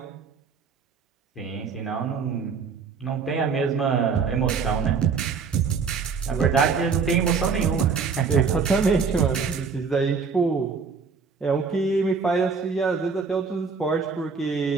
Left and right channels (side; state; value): left; quieter; 5.4 dB